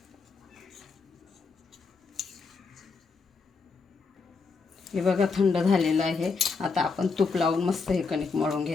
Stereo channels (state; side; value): quieter; right; 4.6 dB